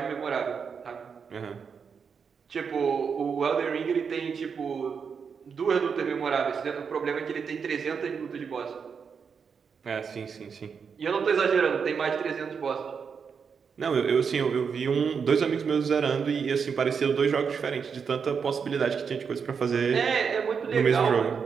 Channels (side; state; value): left; quieter; 6.2 dB